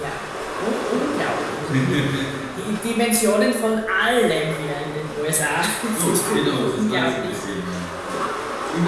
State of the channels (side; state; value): both; identical; correlation 1.00